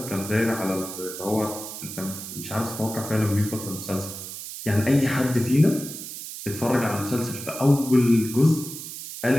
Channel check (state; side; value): noise; right; hiss, 10 dB below the sound